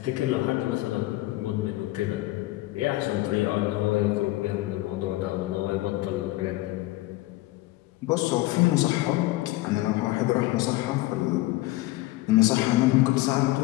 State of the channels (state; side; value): quieter; right; 18.3 dB